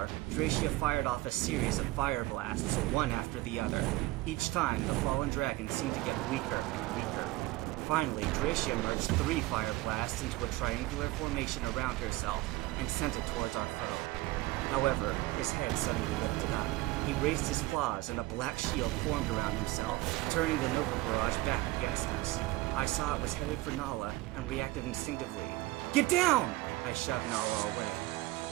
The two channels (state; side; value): quieter; left; 19.1 dB